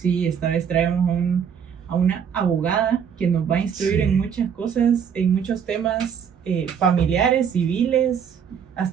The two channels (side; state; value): left; quieter; 7.6 dB